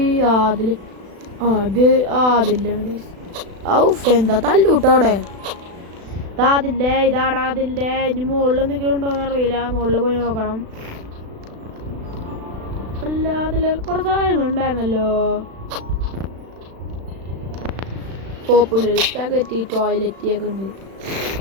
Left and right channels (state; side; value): late; left; 36 ms